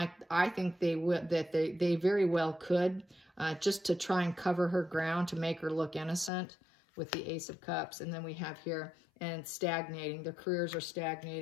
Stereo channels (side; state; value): right; drops out; at 6.3 s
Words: I think they very well could, just to try and cover her ground, to make her look innocent with the Ace of Cups. And then we have here, and stagnating. Their careers are